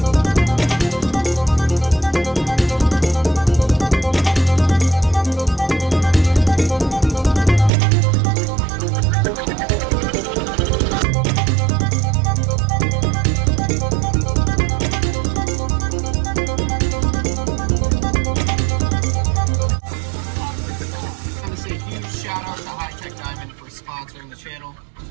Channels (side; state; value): left; drops out; at 7.7 s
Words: I want to say a huge shout out to HiTech Diamond for sponsoring the channel.